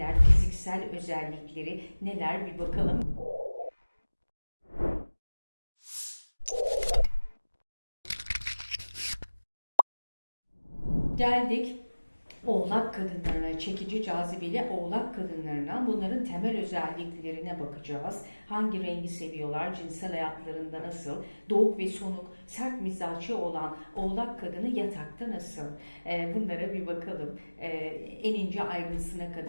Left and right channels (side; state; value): both; inverted; correlation -1.00